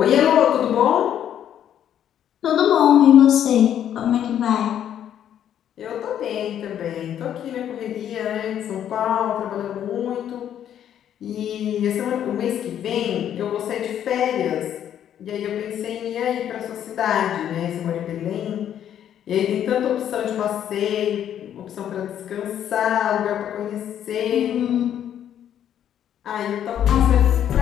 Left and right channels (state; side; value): quieter; right; 10.1 dB